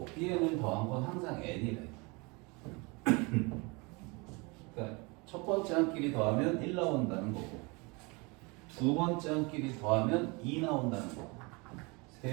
B, N을 더한 건 항상 N이래. 그러니까 첫 번째 한끼리 더하면 1 나온다는 거고, 두 번째 한끼리 더하면 2 나온다는 거고,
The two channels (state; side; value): quieter; left; 28.0 dB